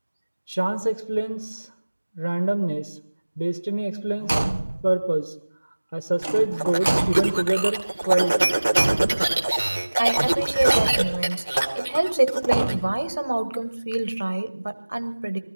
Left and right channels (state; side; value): inverted; both; correlation -1.00